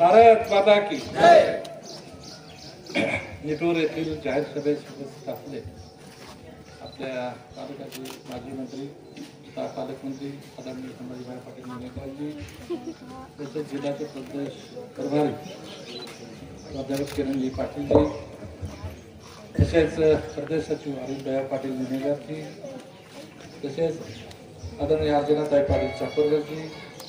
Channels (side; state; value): both; identical; correlation 1.00